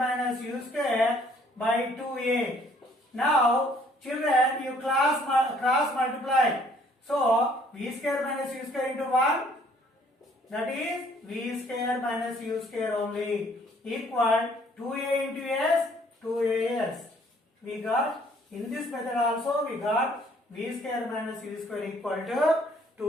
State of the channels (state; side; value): normal; both; correlation 0.61